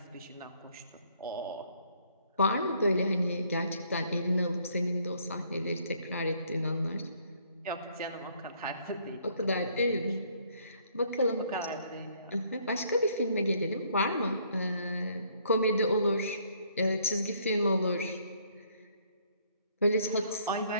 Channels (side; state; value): both; inverted; correlation -0.65